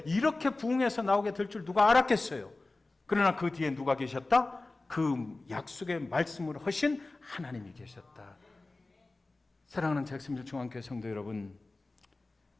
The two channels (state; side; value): quieter; right; 3.2 dB